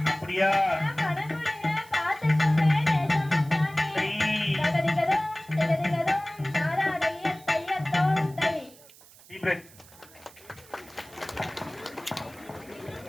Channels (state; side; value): noise; right; hiss, 23 dB below the sound